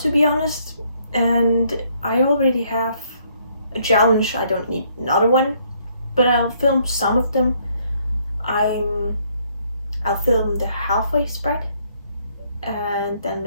be honest. And I already have a challenge. I don't need another one, but I'll film some of them. I'll film the halfway spread, and then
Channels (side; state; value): both; inverted; correlation -0.68